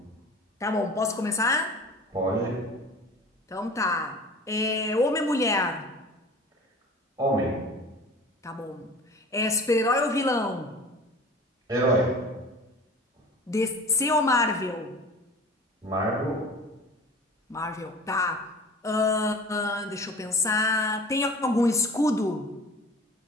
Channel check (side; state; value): both; normal; correlation 0.40